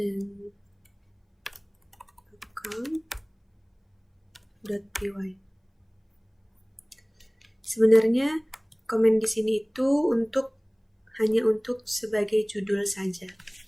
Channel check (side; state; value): both; identical; correlation 1.00